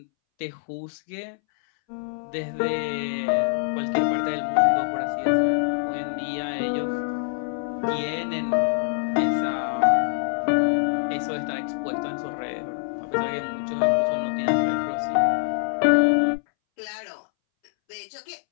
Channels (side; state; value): right; silent; 62 dB below the other